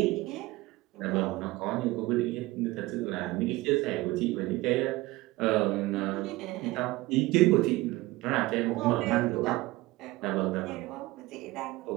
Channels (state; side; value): quieter; left; 19.7 dB